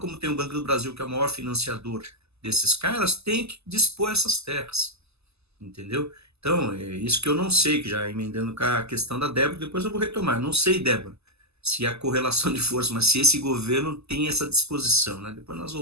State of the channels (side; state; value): left; late; 0.79 ms